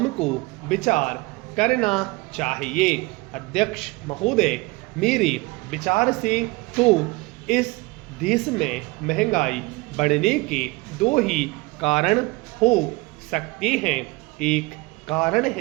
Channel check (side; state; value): left; quieter; 23.7 dB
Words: विचार करना चाहिए। अध्यक्ष महोदय, मेरे विचार से तो इस देश में महंगाई बढ़ने के 2 ही कारण हो सकते हैं। एक कारण